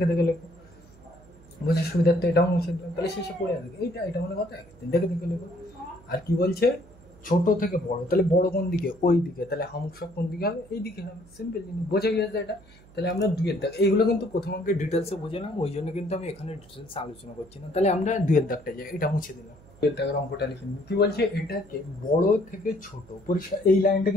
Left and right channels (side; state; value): right; noise; hum, 24 dB below the sound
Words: দেখে লেখো। বোঝার সুবিধার্থে এটাও মুছে দিলাম, তাহলে শেষে পড়ে আসবে এটা মানে কত 1 দেখে দেখে লিখো। আর কি বলছে ছোট থেকে বড়, তাহলে বড় কোন দিকে, ওই দিকে, তাহলে হামুক কোন দিকে হবে, এই দিকে হবে, সিম্পল জিনিস, বোঝা গেছে এটা। তাহলে আমরা দুইয়ের দাগ, এইগুলো কিন্তু প্রথম অঙ্কে ডিটেলসে বোঝালাম, ওই জন্য কিন্তু আমি এখানে ডিটেলসে আলোচনা করছি না। তাহলে আমরা দুইয়ের দাগটা যাই, এটা মুছে দিলাম, দুইয়ের দাগের অঙ্কটা লিখে নিই। কি বলছে এটাকে বড় থেকে ছোট, পরিষ্কার এই লাইনটা